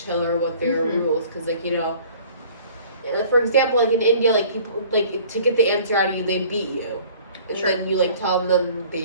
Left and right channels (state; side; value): inverted; both; correlation -0.51